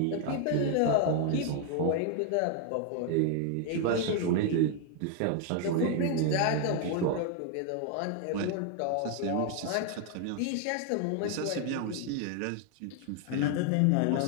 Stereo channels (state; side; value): different; both; correlation 0.00